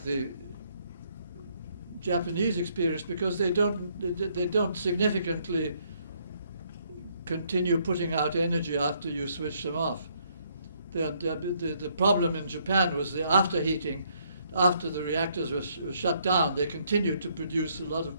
the Japanese experience, because they don't significantly continue putting out energy after you switch them off. The problem in Japan was the afterheating. After the reactors were shut down, they continued to produce a lot of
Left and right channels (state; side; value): inverted; both; correlation -0.69